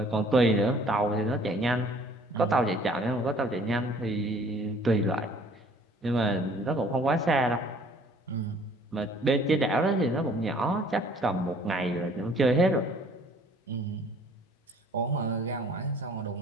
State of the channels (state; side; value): normal; both; correlation 0.55